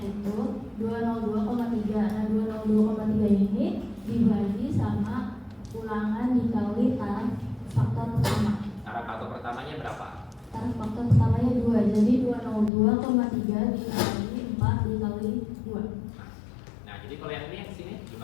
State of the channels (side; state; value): right; drops out; at 12.7 s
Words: 202,3. Nah 202,3 ini dibagi sama ulangan dikali taraf faktor pertama. Taraf faktor pertamanya berapa? Taraf faktor pertamanya 2. Jadi 202,3 dikali 4 dikali 2. Nah, jadi kalau yang ini yang sini